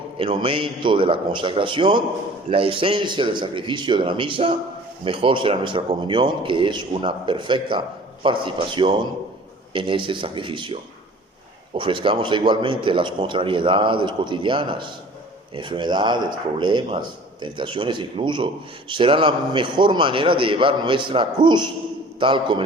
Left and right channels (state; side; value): normal; both; correlation 0.47